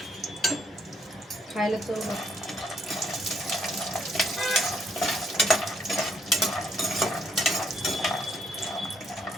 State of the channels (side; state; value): both; normal; correlation 0.71